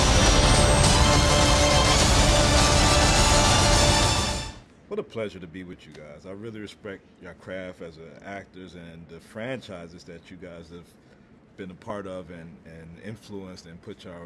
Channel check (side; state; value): both; identical; correlation 1.00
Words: What a pleasure to be with you guys. I really respect your craft as actors and the franchises that you guys have been a part of and influenced and put